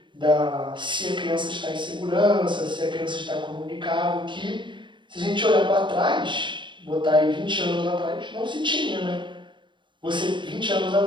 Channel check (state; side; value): late; left; 0.23 ms